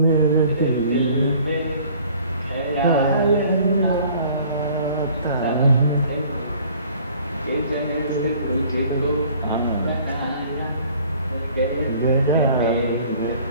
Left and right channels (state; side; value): inverted; both; correlation -0.53